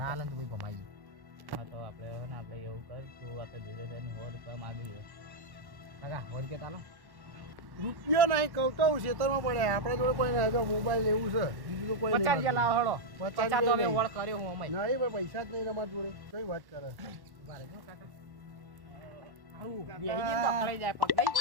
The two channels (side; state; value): left; late; 1.1 ms